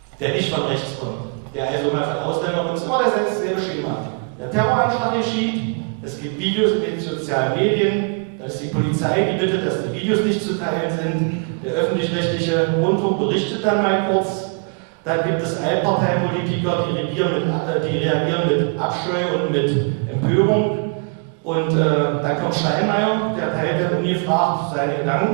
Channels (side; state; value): left; quieter; 39.0 dB